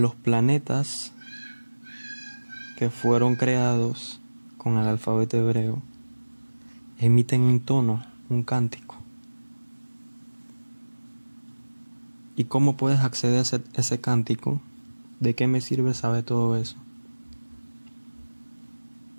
planetas que fueron creados con el alfabeto hebreo emiten un tono, un cántico. ¿Y cómo puedes acceder a ese cántico? ¿De qué me sirve saber todo eso?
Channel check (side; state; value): both; inverted; correlation -1.00